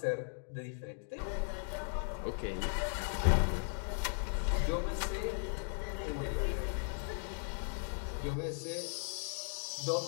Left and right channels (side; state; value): right; silent; 53 dB below the other